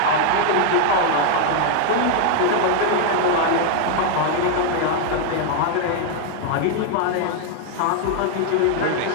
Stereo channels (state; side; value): different; both; correlation 0.00